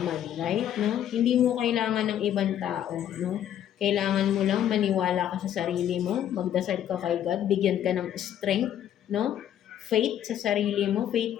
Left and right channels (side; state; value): right; quieter; 10.6 dB